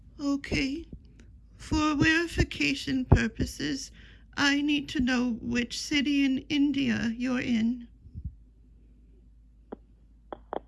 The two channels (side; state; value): both; identical; correlation 1.00